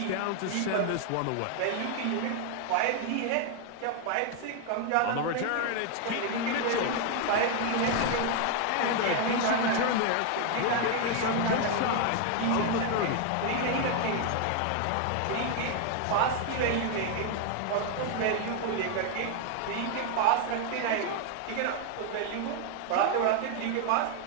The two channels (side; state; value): both; different; correlation 0.00